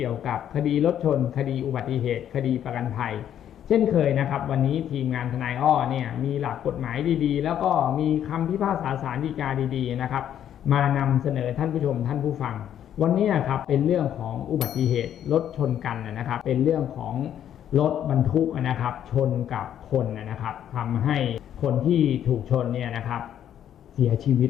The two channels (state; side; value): quieter; right; 10.2 dB